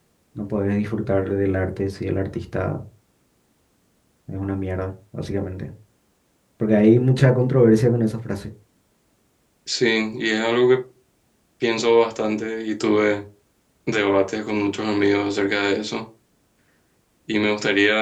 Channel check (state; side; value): identical; both; correlation 1.00